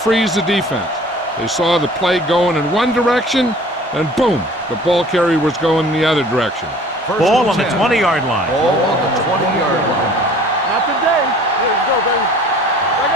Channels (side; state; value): both; normal; correlation 0.49